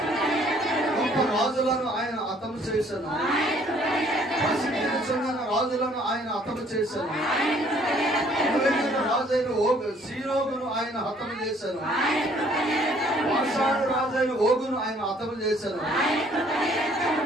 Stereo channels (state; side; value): normal; both; correlation 0.60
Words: గొప్ప రాజులను ఆయన హతము చేశాను. ప్రసిద్ధిని చెందిన రాజులను ఆయన హతము చేశాను. రాజైన సీరోగును ఆయన హతము చేశాను. బాషాను రాజైన ఓగును ఆయన హతము చేశాను.